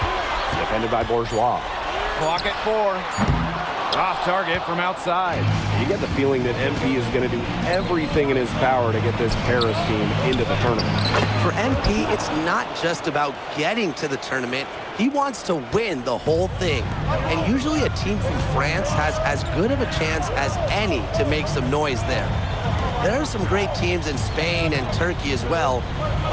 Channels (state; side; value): identical; both; correlation 1.00